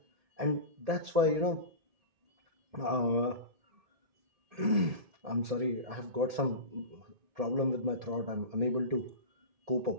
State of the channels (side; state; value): left; late; 1.8 ms